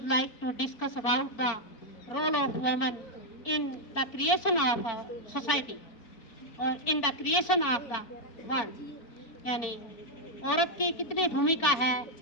like to discuss about the role of women in the creation of a society और in the creation of the world. यानी औरत की कितनी भूमिका है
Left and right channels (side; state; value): right; late; 4.5 ms